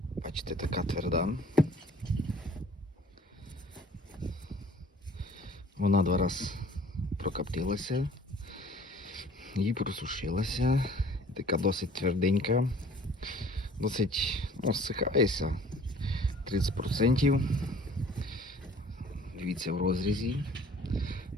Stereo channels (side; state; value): both; normal; correlation 0.51